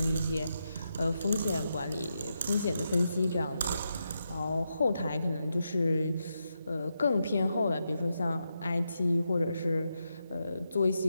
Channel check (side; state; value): both; inverted; correlation -0.85